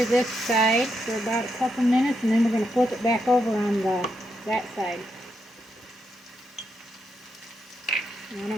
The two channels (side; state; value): both; normal; correlation 0.81